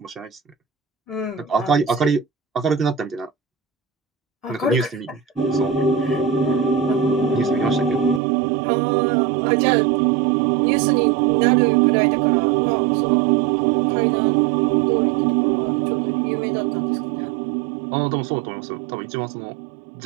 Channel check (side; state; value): left; drops out; at 8.2 s